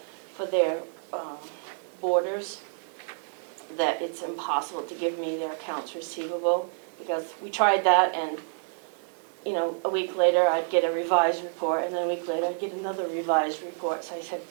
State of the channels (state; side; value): silent; left; digital silence